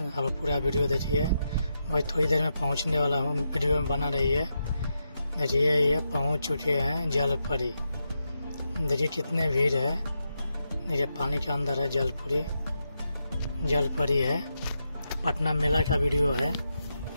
अब पूरा वीडियो देखिए, मैं थोड़ी देर में पहुंचने वाला हूं। वीडियो में बना रही है। देखिए ये पहुंच चुके हैं जल परी। देखिए कितने भीड़ है। देखिए पानी के अंदर है जल परी है। पटना मेला का वीडियो है।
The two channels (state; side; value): inverted; both; correlation -0.85